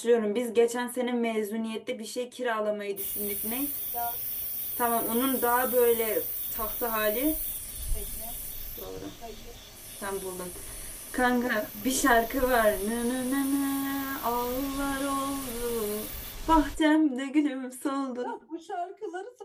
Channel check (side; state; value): both; identical; correlation 1.00